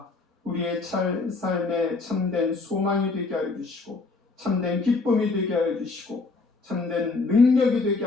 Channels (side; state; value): right; quieter; 3.8 dB